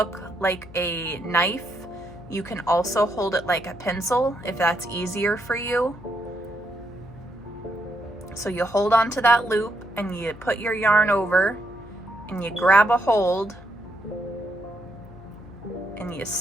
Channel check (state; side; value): noise; left; hum, 18 dB below the sound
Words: like a knife. You can also hold it like a pencil if that's easier for you. So you hold on to that loop and you put your yarn over and you grab a hold and you